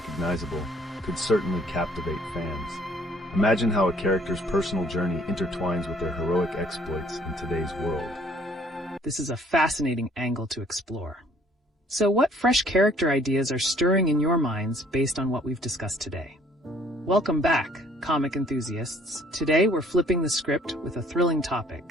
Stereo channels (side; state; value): both; normal; correlation 0.59